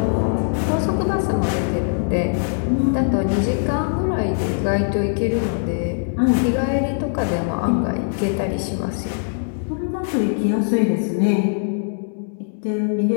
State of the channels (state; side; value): silent; right; digital silence